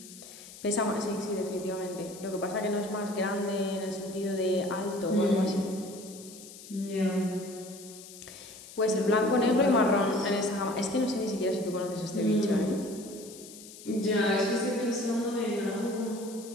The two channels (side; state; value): left; noise; hiss, 16 dB below the sound